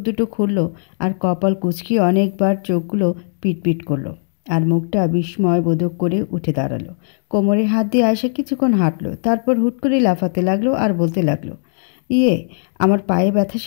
দুটো খুলল, আর কপাল কুঁচকিয়ে অনেকবার চোখগুলো পিটপিট করলো, আর মুখটা বিস্ময়বোধক করে উঠে দাঁড়ালো। কোমরে হাত দিয়ে আয়েশা কিছুক্ষণ হাঁটলো, তারপর হুট করে লাফাতে লাগলো আর বলতে লাগলো, ইয়ে, আমার পায়ে ব্যথা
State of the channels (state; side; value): silent; right; digital silence